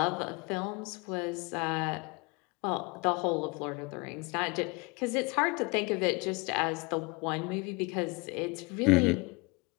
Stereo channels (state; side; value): quieter; right; 27.6 dB